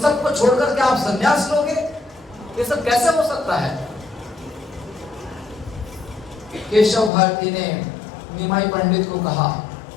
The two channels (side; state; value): right; drops out; at 7.1 s